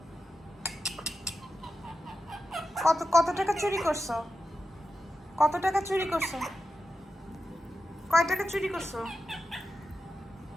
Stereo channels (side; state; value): both; normal; correlation 0.91